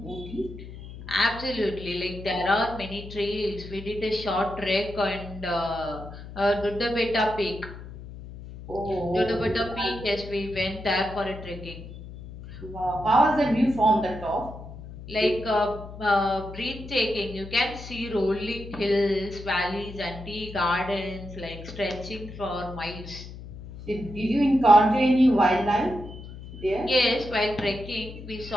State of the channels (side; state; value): left; noise; hum, 13 dB below the sound